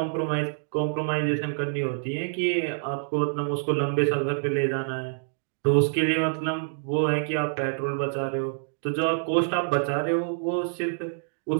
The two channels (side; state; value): left; silent; digital silence